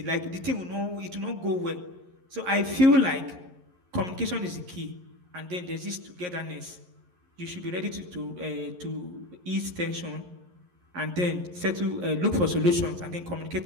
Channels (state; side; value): late; left; 11 ms